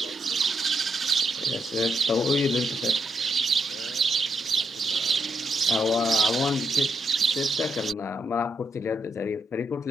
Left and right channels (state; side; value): normal; both; correlation 0.79